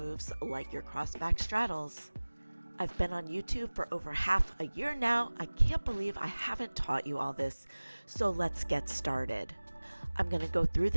like your cross back straddles. I've been on YouTube for over half a year now. I can't believe I haven't taught you all this, so let's get started. I'm going to go through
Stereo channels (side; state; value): both; inverted; correlation -1.00